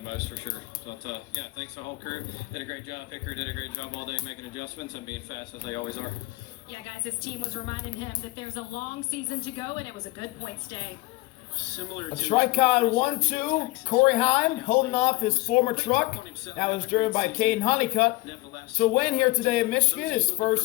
most for sure. But yeah, thanks to the whole crew. Did a great job. Picker did a great job all day making adjustments and being fast as they always are. Yeah, guys, his team was reminding him that there's a long season to go, and it was a good points day. A Tricon 1-2, Corey Heim holding off his former truck. That was driven by Kaden Honeycutt. So win here today in Michigan, his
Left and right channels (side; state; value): right; quieter; 21.5 dB